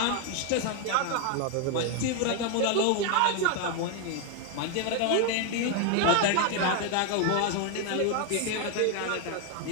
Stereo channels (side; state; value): both; different; correlation 0.01